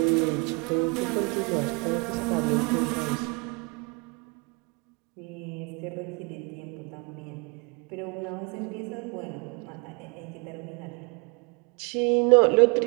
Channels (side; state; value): left; quieter; 31.1 dB